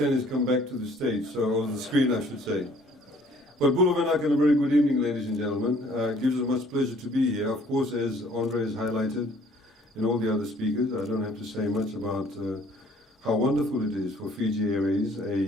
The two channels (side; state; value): both; normal; correlation 0.58